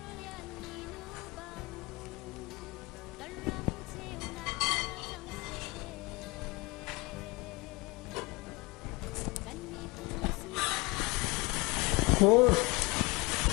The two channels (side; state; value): right; quieter; 25.2 dB